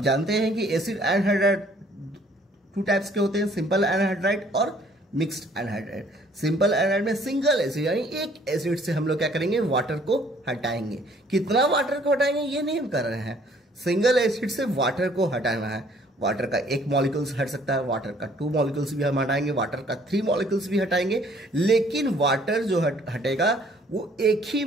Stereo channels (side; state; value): both; normal; correlation 0.60